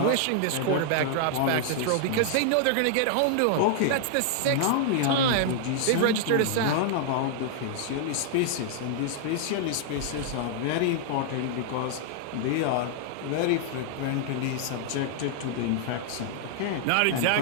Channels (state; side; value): different; both; correlation -0.01